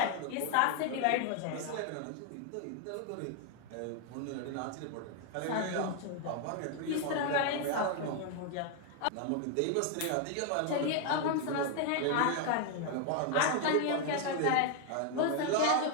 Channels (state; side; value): different; both; correlation 0.00